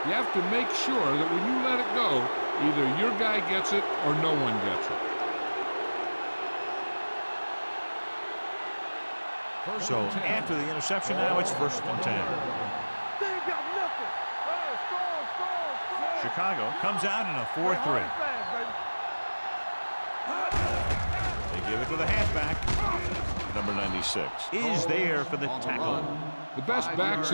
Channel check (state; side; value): inverted; both; correlation -1.00